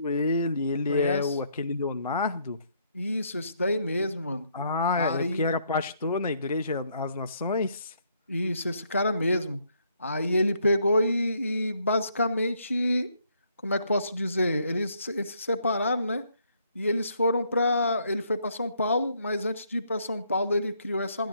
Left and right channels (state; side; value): inverted; both; correlation -0.70